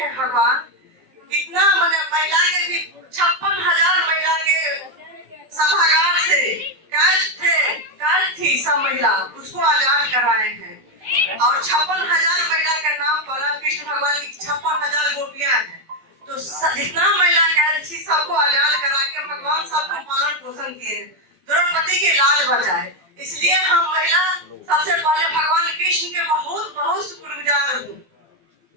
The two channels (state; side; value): late; left; 12 ms